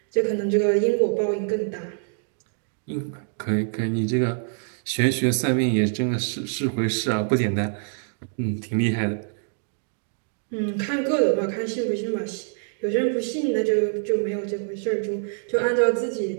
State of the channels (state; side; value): silent; left; digital silence